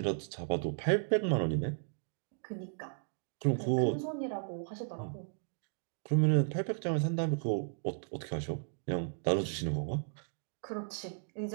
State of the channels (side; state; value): left; silent; digital silence